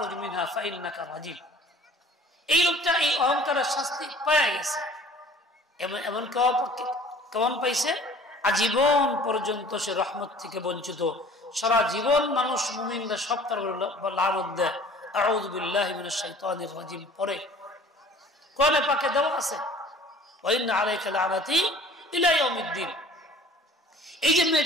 মিনহা ফাইন্নাকা রাজিম। এই লোকটা এই অহংকারের শাস্তি পেয়ে গেছে। এমন কেমন পাইছে? আজীবন পর্যন্ত সে রহমত থেকে বঞ্চিত। সারা জীবন মানুষ মুমিনরা সব তার লানত দেয়, আউযু বিল্লাহি মিনাশ শাইতানির রাজিম পড়ে। কোরআনে পাকে দেওয়া আছে, ওয়া ইন্না আলাইকা লানাতি ইলা ইয়াউমিদ্দিন। এই যে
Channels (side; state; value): both; normal; correlation 0.49